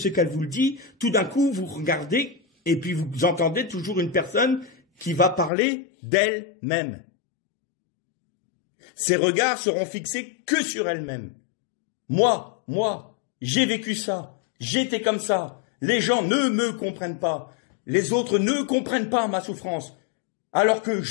qu'elle vous dit, tout d'un coup, vous regardez et puis vous entendez toujours une personne qui va parler d'elle-même. Ses regards seront fixés que sur elle-même. Moi, j'ai vécu ça, j'étais comme ça. Les gens ne me comprennent pas. Les autres ne comprennent pas ma souffrance. Alors que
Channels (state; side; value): drops out; right; at 5.5 s